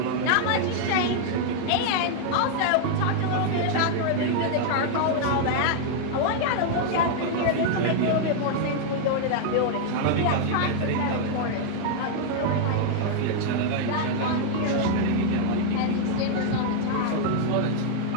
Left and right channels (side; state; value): both; different; correlation -0.01